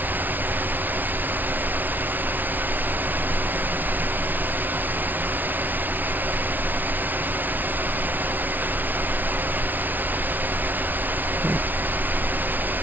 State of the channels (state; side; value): late; left; 0.086 ms